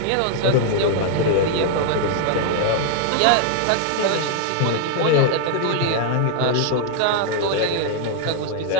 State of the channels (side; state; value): both; different; correlation 0.00